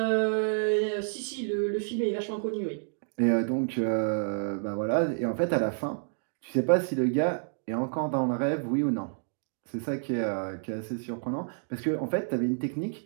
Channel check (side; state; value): left; silent; digital silence